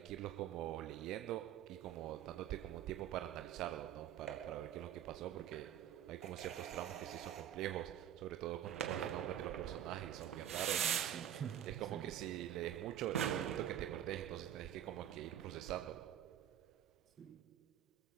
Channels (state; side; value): quieter; left; 10.8 dB